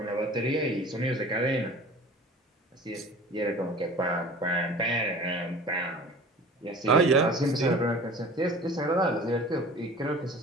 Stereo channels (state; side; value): normal; both; correlation 0.42